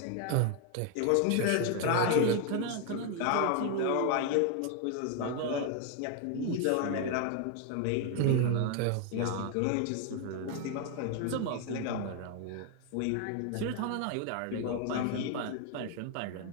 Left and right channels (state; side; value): different; both; correlation 0.00